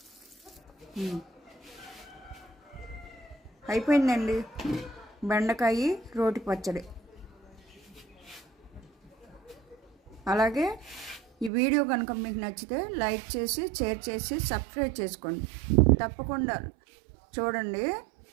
అయిపోయిందండి బెండకాయ రోటి పచ్చడి. అలాగే ఈ వీడియో కనుక మీకు నచ్చితే లైక్ చేసి, షేర్ చేసి, సబ్స్క్రైబ్ చేసుకోండి. తప్పకుండా చూడండి,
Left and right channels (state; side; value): drops out; left; at 11.5 s